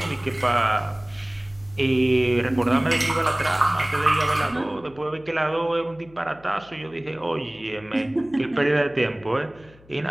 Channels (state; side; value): noise; left; hum, 26 dB below the sound